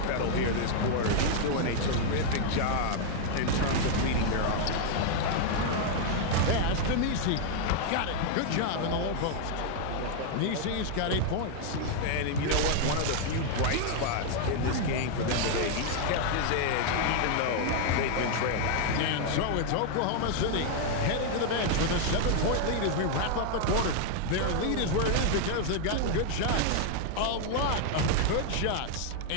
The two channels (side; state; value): both; different; correlation 0.00